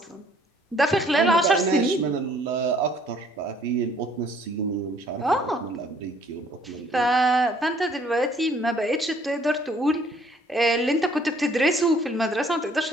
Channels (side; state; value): both; normal; correlation 0.60